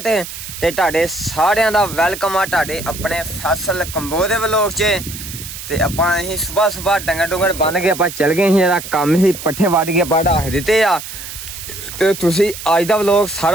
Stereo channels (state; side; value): noise; right; hiss, 11 dB below the sound